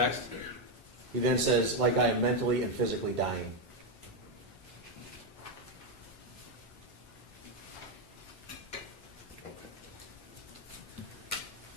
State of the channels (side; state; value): both; normal; correlation 0.04